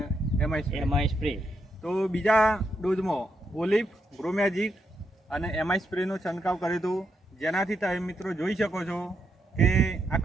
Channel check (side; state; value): both; normal; correlation 0.81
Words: એમઆઈ એમઆઈ સ્પ્રે. તો બીજા ડોઝમાં ઓલિફ, ગ્રો મેજિક અને એમઆઈ સ્પ્રેનો છંટકાવ કર્યો હતો, જેનાથી તમે મિત્રો જોઈ શકો છો કે આ